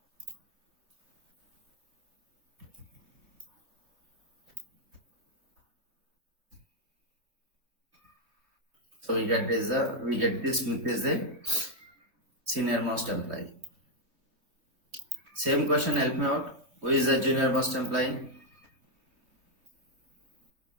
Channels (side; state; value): left; late; 3.0 ms